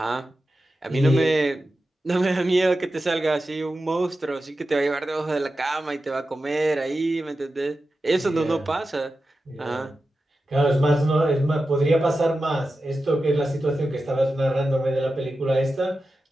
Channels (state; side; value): normal; both; correlation 0.92